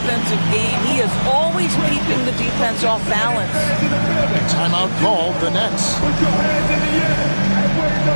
game. He is always keeping the defense off balance. Timeout called, the Nets. Put your hands in the air and wave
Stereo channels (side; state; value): both; inverted; correlation -1.00